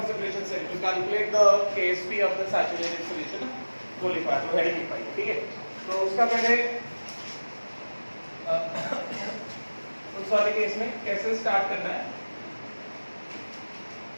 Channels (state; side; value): inverted; both; correlation -1.00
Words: cell to calculate the KSP of the saturated solution, वो लिखवाया तो हेडिंग लिखवाई, ठीक है। तो उसका पहले उस वाले केस में कैसे स्टार्ट करना है,